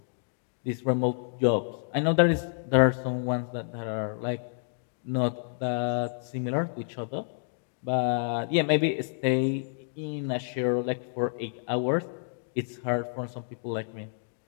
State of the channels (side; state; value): right; silent; digital silence